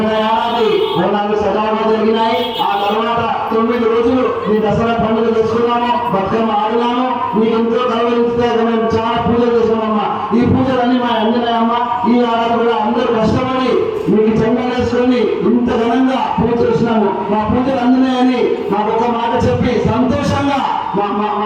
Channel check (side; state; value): both; identical; correlation 1.00